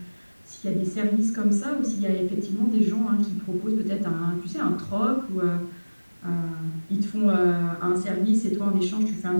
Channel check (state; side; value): inverted; both; correlation -1.00